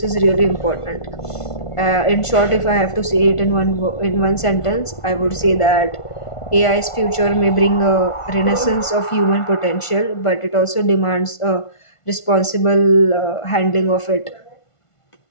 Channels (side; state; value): right; late; 1.5 ms